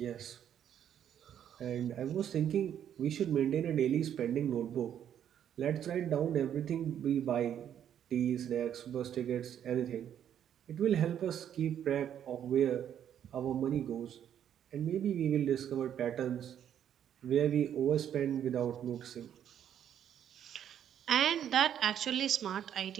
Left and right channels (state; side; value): quieter; left; 9.7 dB